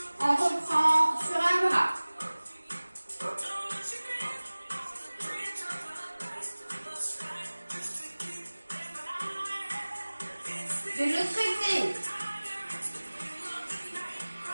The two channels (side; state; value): both; inverted; correlation -1.00